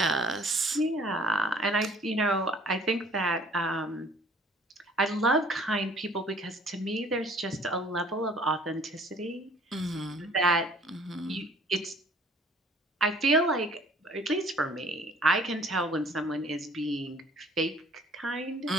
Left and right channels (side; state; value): both; normal; correlation 0.54